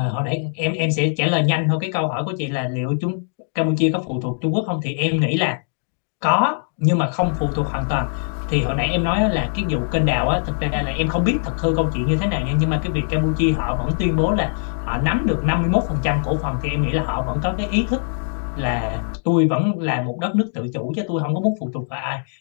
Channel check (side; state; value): right; silent; digital silence